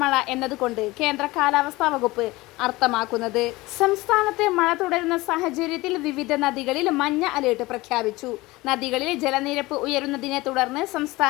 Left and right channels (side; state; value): right; quieter; 20.6 dB